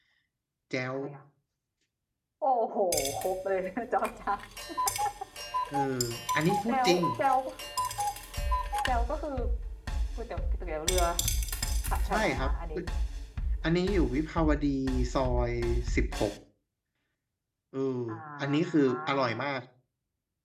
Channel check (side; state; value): both; identical; correlation 1.00